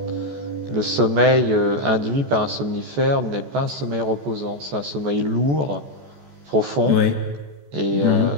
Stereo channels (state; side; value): late; left; 14 ms